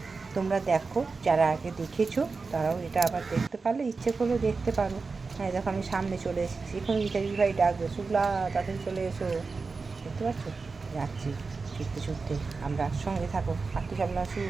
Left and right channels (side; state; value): left; quieter; 4.3 dB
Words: তোমরা দেখো, যারা আগে দেখেছো তারাও এটা আবার দেখতে পারলে, ইচ্ছে করলে দেখতে পারো। হ্যাঁ দেখো, আমি সামনে চলে এসেছি। এখন ইত্যাদি ভাই ডাকবে, শুক্লা তাড়াতাড়ি চলে এসো। দেখতে পাচ্ছ, যাচ্ছি ছুটতে। আমরা সঙ্গে থাকো। মাতৃ সম্মেলন শুরু